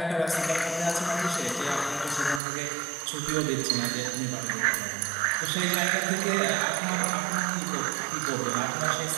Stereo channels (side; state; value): left; drops out; at 2.4 s